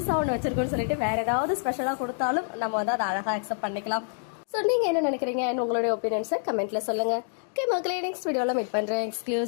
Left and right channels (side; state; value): right; silent; digital silence